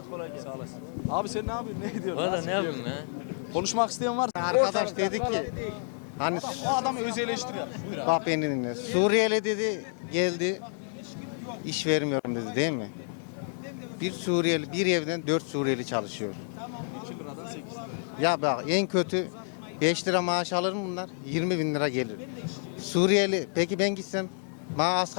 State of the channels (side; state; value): right; silent; digital silence